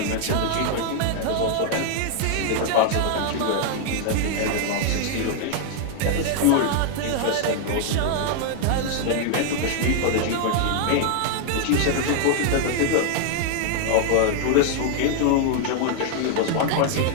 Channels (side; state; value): both; different; correlation 0.00